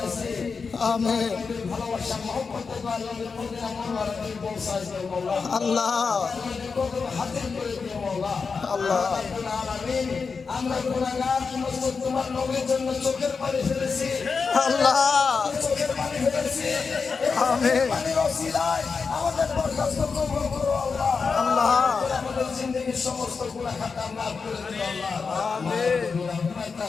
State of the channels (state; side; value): quieter; right; 5.1 dB